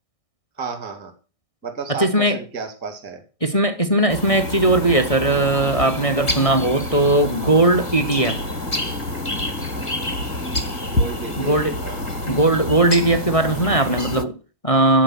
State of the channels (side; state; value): right; late; 1.6 ms